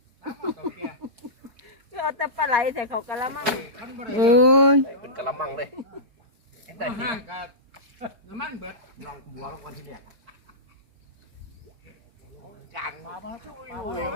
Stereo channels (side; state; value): left; late; 4.6 ms